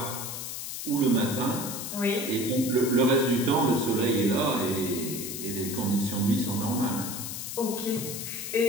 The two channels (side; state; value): left; noise; hiss, 6 dB below the sound